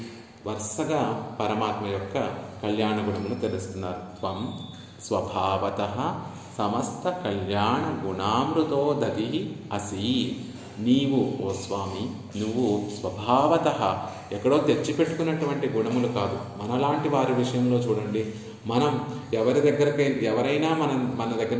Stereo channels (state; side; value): identical; both; correlation 1.00